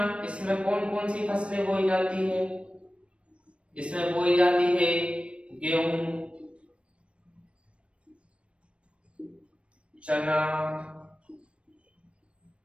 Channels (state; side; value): late; left; 0.060 ms